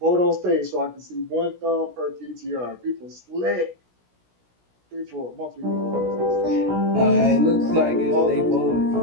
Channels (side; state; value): left; late; 16 ms